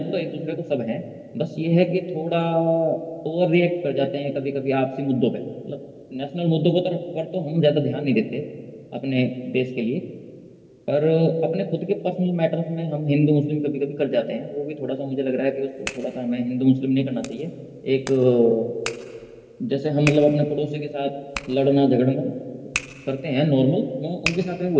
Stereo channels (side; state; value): both; identical; correlation 1.00